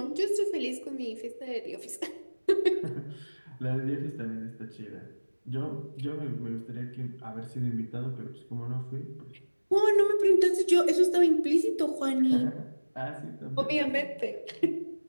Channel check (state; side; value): inverted; both; correlation -1.00